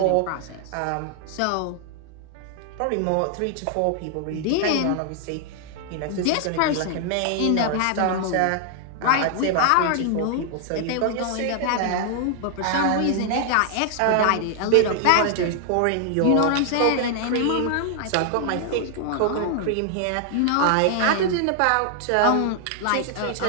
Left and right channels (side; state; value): both; different; correlation 0.00